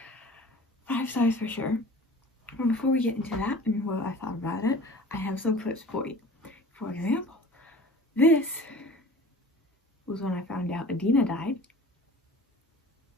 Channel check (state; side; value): normal; both; correlation 0.42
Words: 5 stars for sure. But before we get into that and what I thought about it, I have some clips for you. For example, this was when I found out Adina died.